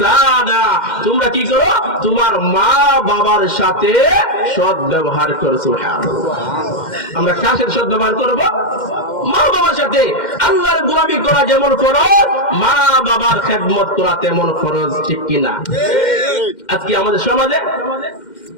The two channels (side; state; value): right; late; 2.1 ms